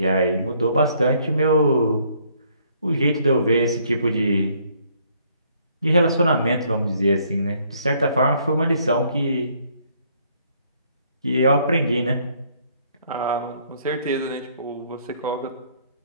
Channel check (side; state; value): both; inverted; correlation -0.66